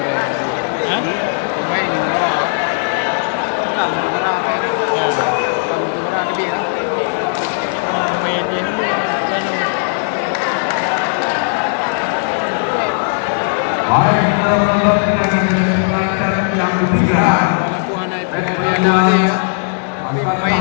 Baik, kita menonton kita akan menyaksikan set yang ketiga.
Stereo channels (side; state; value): right; silent; 65 dB below the other